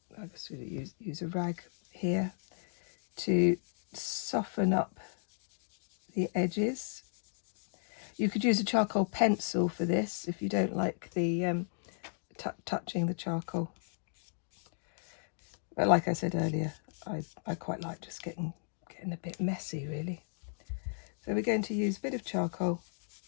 I guess we use a rag here to soften up the edges. You could use a charcoal pencil for this if you don't like the touching the charcoal. But like I said earlier, I quite like just getting a bit messy, really. So we're going to use a bit of charcoal,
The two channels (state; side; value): silent; right; digital silence